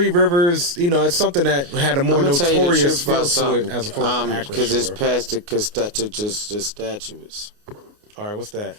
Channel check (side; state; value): left; late; 29 ms